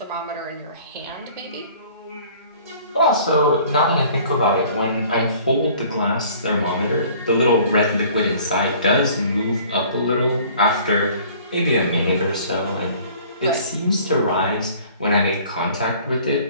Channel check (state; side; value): inverted; both; correlation -0.51